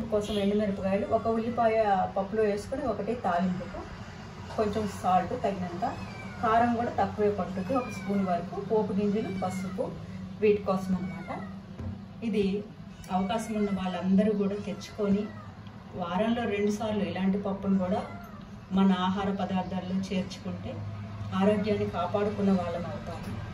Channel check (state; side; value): identical; both; correlation 1.00